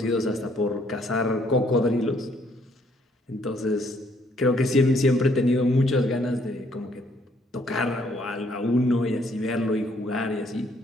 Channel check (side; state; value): both; normal; correlation 0.67